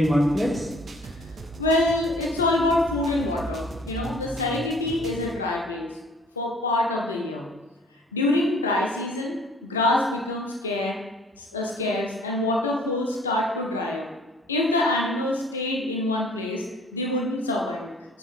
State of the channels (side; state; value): both; normal; correlation 0.53